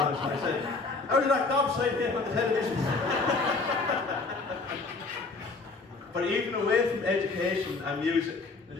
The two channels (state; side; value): quieter; right; 3.9 dB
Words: it, and I said, "How did that gobshite get on the television?" But even away from education and music, and